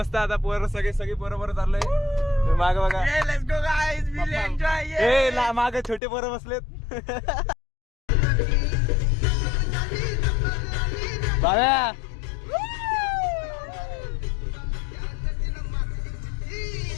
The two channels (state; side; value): drops out; right; at 6.0 s